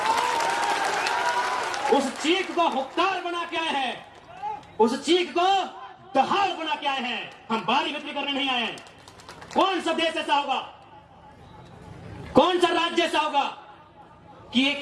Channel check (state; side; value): identical; both; correlation 1.00